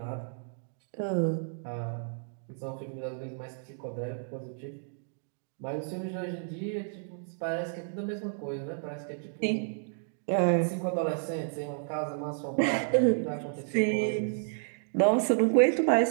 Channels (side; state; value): left; silent; digital silence